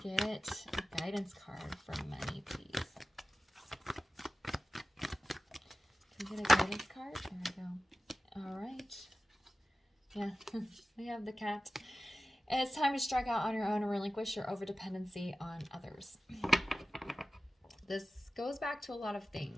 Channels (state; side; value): normal; both; correlation 0.95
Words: a guidance card for money, please? Can we get a guidance card? There we go. All right. Yeah, we have the cat. And it's time to strike out on your own and relinquish your overdependency on others. This goes back to a lot of